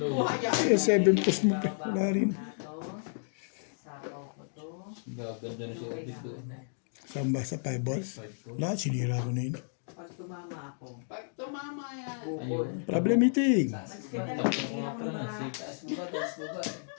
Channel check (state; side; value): silent; right; digital silence